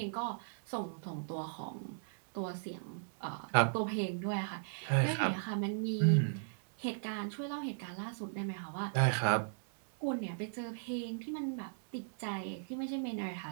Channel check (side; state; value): left; silent; 53 dB below the other